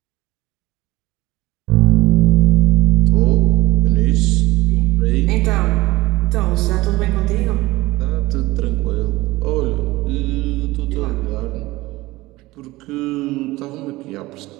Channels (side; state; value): left; quieter; 19.4 dB